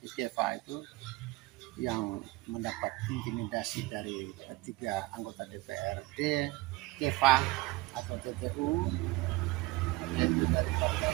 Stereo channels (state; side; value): quieter; left; 20.6 dB